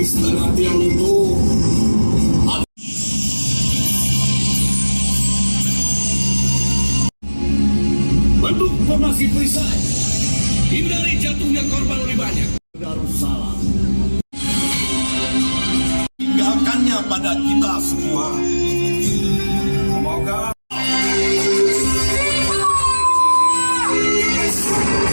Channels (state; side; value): inverted; both; correlation -1.00